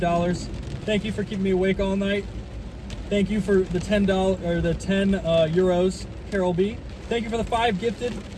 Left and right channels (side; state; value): both; identical; correlation 1.00